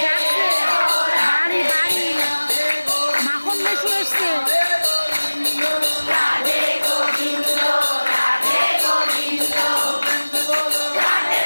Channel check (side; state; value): both; inverted; correlation -1.00